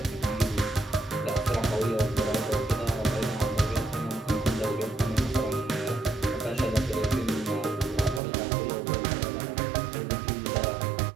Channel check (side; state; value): left; drops out; at 8.2 s